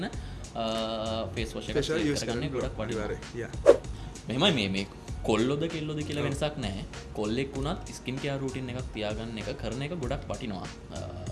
ෆේස් වොෂ් එකක් සිලෙක්ට් කරගන්නේ ගොඩක් වටිනවා. මෙහෙමයි මේ කොල්ලොද කෙල්ලොද කියලා වෙනසක් නැහැ. කොල්ලෙක් වුණත් ස්කින් කෙයාර් රූටින් එකක් තියාගන්න එක කරන එක ගොඩක් වටිනවා.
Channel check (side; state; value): both; identical; correlation 1.00